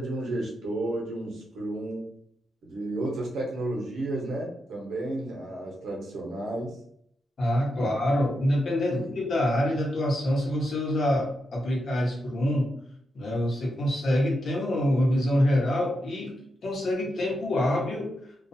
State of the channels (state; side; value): normal; both; correlation 0.86